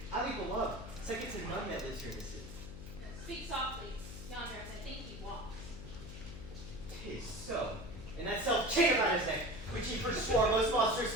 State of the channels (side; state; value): left; noise; hum, 11 dB below the sound